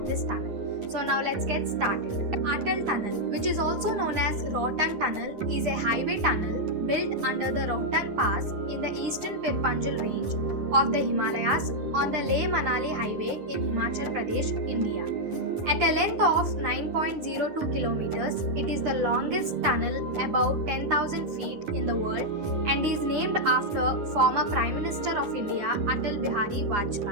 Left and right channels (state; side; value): late; left; 9.9 ms